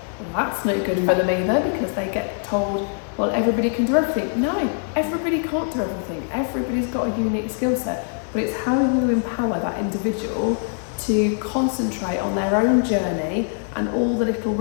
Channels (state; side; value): silent; right; 63 dB below the other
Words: that's no good for them either, because they get told, well, everybody can do everything. No, everybody can't do everything. Everybody's got a unique skill set, but it's how you empower that individual to concentrate on their own journey and all the little